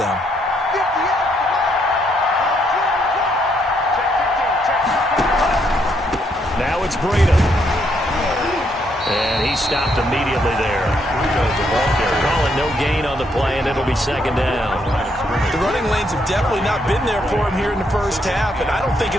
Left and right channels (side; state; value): both; normal; correlation 0.74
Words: Now it's Breida. And he stopped immediately there. Calling no gain on the play, and it'll be second down. The running lanes have definitely not been there for him here in the first half, and I don't think